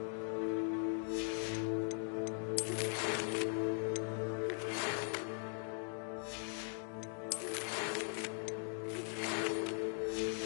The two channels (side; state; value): right; silent; 51 dB below the other